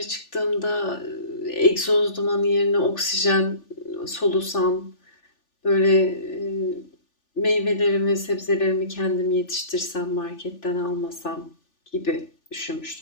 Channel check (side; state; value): right; late; 3.4 ms